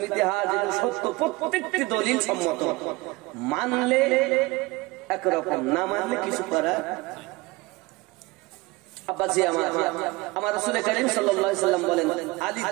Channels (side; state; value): left; quieter; 22.2 dB